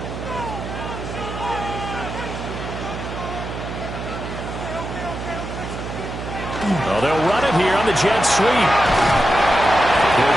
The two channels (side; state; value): right; noise; hum, 8 dB below the sound